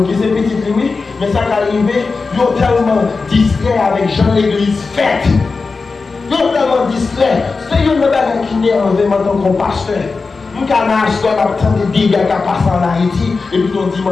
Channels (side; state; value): right; quieter; 4.3 dB